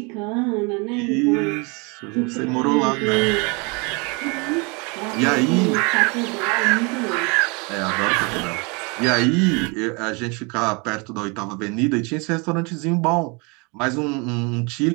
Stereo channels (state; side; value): quieter; left; 30.6 dB